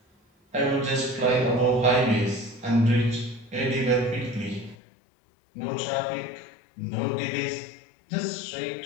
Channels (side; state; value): right; drops out; at 4.8 s